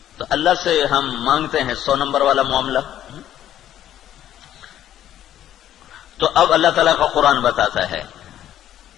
تو اللہ سے ہم مانگتے ہیں 100 نمبر والا معاملہ۔ تو اب اللہ تعالیٰ کا قرآن بتاتا ہے،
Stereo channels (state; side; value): quieter; right; 11.6 dB